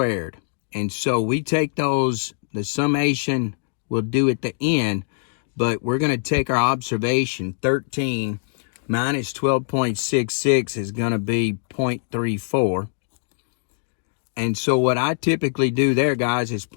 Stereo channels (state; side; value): silent; right; digital silence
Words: And so we take those, the summation we'll do at the end, but we're going to take our observation, 13 minus 12.66 is going to be 0.34. And so what I typically do there, guys, is